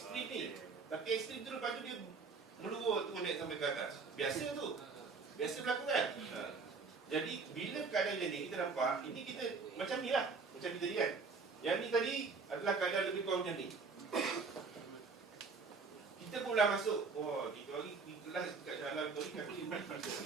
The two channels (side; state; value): left; quieter; 4.6 dB